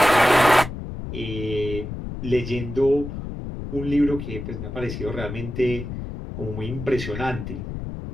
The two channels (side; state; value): left; noise; rumble, 7 dB below the sound